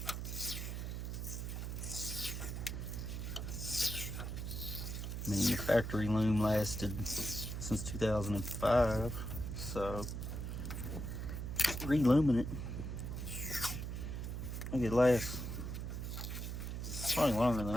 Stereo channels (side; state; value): right; noise; hum, 4 dB below the sound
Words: I mean, the factory loom lasted since 2005, so re-looming it, I think it lasts probably longer than